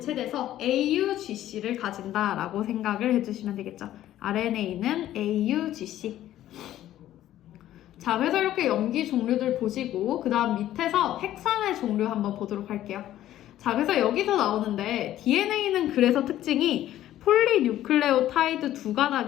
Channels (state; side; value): quieter; right; 13.1 dB